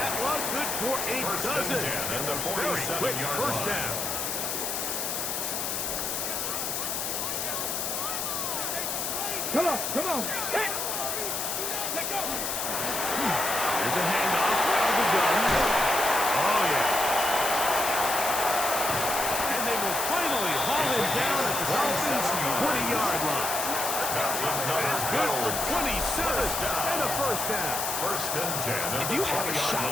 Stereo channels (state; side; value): noise; left; hiss, 2 dB below the sound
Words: one good for a dozen. And the Very quick 47-yard first line. down. Come on, come on. Hey. Let go. There's a handoff out of the gun. Oh, yeah. And they will finally haul him down at the Dolphins' 20-yard line. That's good for 27 and a first down. 1st and 10. If you have a